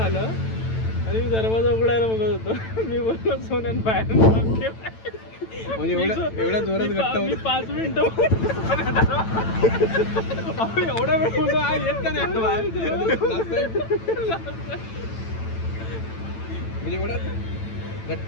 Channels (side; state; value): right; late; 9.0 ms